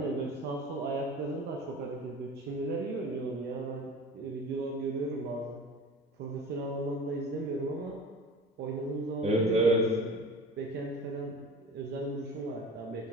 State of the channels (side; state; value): both; normal; correlation 0.38